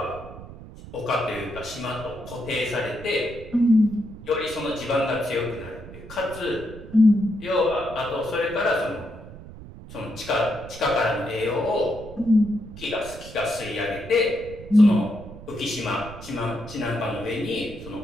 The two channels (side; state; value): right; noise; rumble, 15 dB below the sound